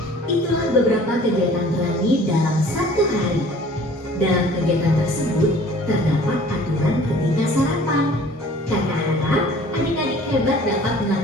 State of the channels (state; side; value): normal; both; correlation 0.50